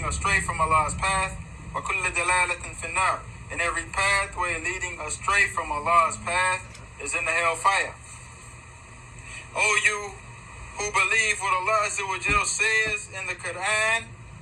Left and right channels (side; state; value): both; identical; correlation 1.00